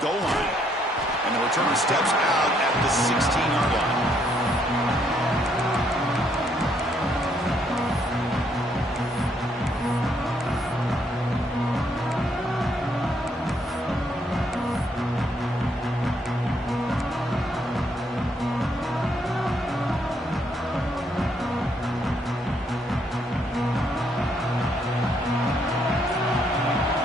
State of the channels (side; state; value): both; normal; correlation 0.71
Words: goal line. And the returner steps out at the 16-yard line.